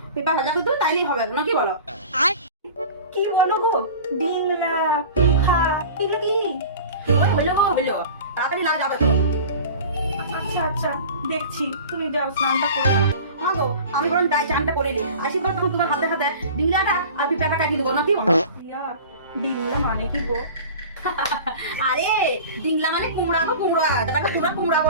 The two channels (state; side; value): inverted; both; correlation -0.39